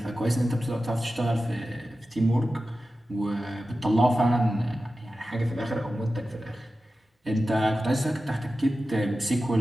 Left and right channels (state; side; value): normal; both; correlation 0.94